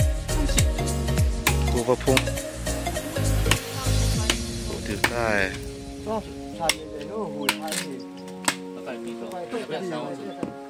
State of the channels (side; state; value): both; identical; correlation 1.00